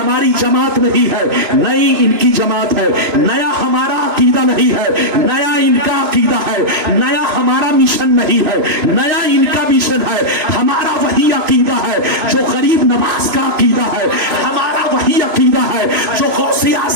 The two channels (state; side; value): late; left; 2.9 ms